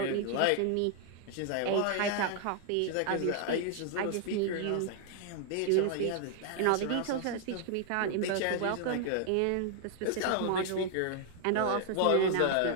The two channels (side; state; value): both; different; correlation 0.00